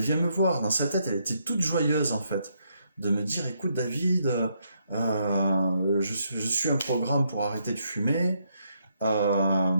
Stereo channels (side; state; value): both; inverted; correlation -0.75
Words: me voir, dans sa tête, elle était toute joyeuse en fait, de me dire, écoute David, je suis un programme pour arrêter de fumer,